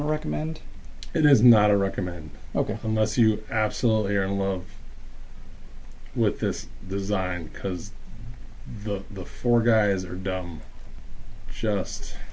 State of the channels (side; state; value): both; identical; correlation 1.00